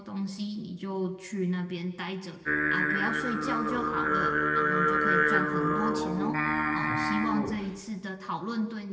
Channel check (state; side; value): identical; both; correlation 1.00